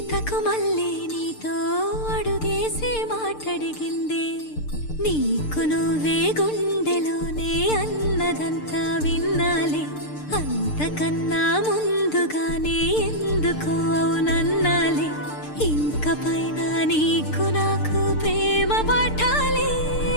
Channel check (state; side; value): late; right; 6.7 ms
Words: మళ్ళీ నీతో అడుగేసి మాటడిగిందే నీకు నువ్వే గుండెలోనే అన్నదంతా విన్నాలే అంతకన్నా ముందుగానే ఎందుకు అవునన్నాలే ఇంక పైన నీకు నాకు ప్రేమ పాఠాలే